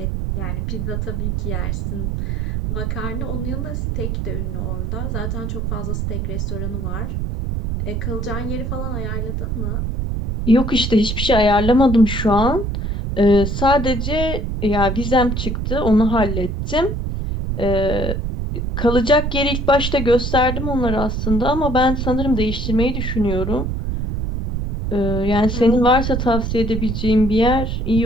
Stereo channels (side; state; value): right; noise; rumble, 2 dB below the sound